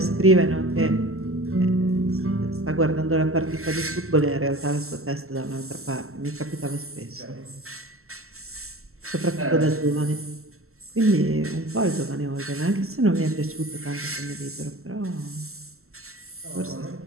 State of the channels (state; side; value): late; left; 0.63 ms